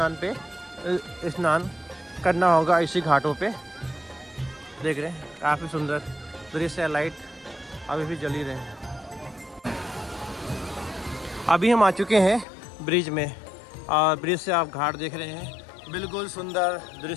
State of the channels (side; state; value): right; drops out; at 12.5 s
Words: करना होगा, इसी घाटों पे। देख रहे हैं काफ़ी सुंदर दृश्य। लाइट अभी भी जल ही रहे हैं। अभी हम आ चुके हैं ब्रिज में और ब्रिज से आप घाट देख रहे हैं। बिल्कुल सुंदर